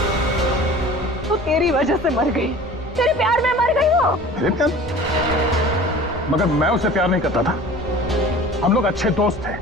तो तेरी वजह से मर गई। तेरे प्यार में मर गई वो। मेरे प्यार? मगर मैं उसे प्यार नहीं करता था। हम लोग अच्छे दोस्त थे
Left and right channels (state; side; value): normal; both; correlation 0.42